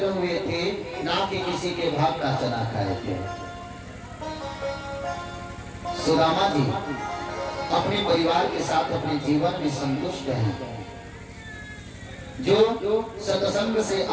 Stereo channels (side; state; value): both; identical; correlation 1.00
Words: हुए थे, ना कि किसी के भाग का चना खाए थे। सुदामा जी अपने परिवार के साथ अपने जीवन में संतुष्ट हैं। जो सत्संग से